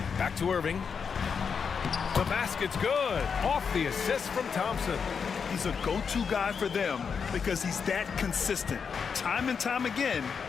Back to Irving. The basket's good. Off the assist from Thompson. He's a go-to guy for them because he's that consistent. Time and time again,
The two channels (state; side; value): quieter; right; 6.2 dB